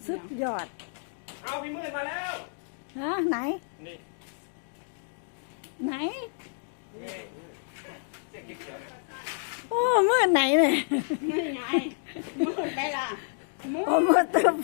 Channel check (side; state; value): right; silent; digital silence